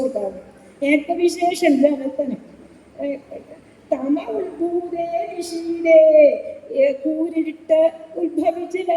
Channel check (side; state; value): both; identical; correlation 1.00